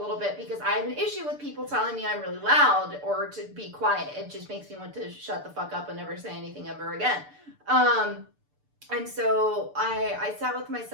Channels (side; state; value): left; late; 6.8 ms